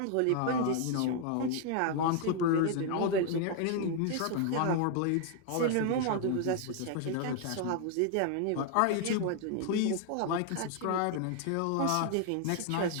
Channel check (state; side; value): different; both; correlation 0.00